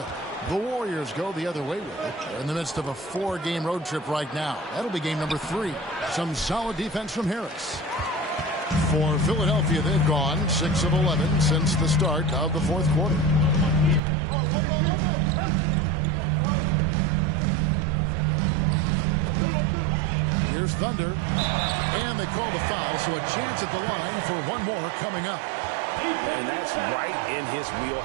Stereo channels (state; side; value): drops out; left; at 14.0 s